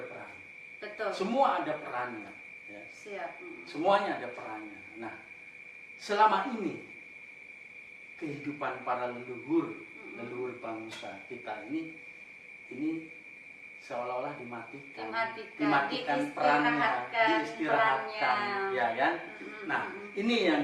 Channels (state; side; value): identical; both; correlation 1.00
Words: Betul. Semua ada perannya. Ya. Siap. Semuanya ada perannya. Nah, selama ini kehidupan para leluhur bangsa kita ini seolah-olah dimatikan perannya, diistirahatkan, ya kan? Nah, ini